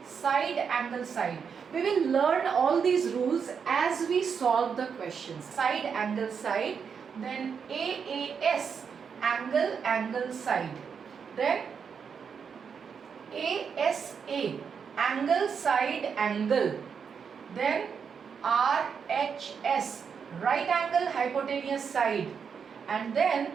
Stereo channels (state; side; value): quieter; left; 6.5 dB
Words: side, angle, side. We will learn all these rules as we solve the questions. Side, angle, side. Then AAS, angle, angle, side. Then ASA, angle, side, angle. Then RHS, right angle, hypotenuse, side. And then